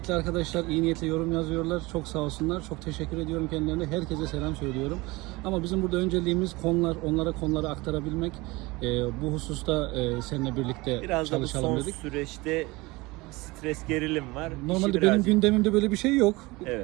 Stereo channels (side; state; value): left; quieter; 22.7 dB